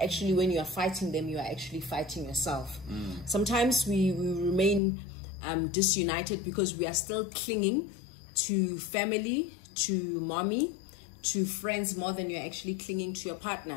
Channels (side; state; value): right; drops out; at 4.8 s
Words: actually when you are fighting them, you are actually fighting yourself. Sometimes we remain disunited because we are still clinging to family, to mommy, to friends more than you're actually clinging to your